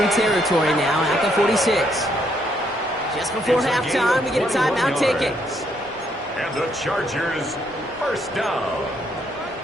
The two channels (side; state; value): both; normal; correlation 0.72